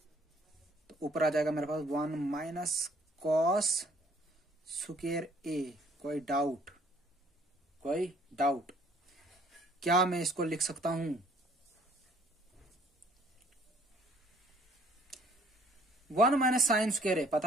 तो ऊपर आ जाएगा मेरे पास 1 माइनस cos स्क्वायर ए। कोई डाउट? कोई डाउट? क्या मैं इसको लिख सकता हूं 1 माइनस साइन स्क्वायर ए,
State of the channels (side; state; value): both; normal; correlation 0.59